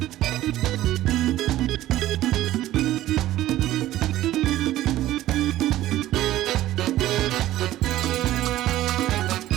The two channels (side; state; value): left; quieter; 14.6 dB